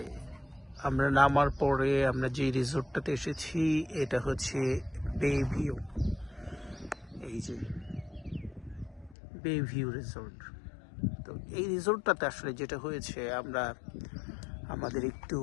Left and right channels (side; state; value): right; drops out; at 9.2 s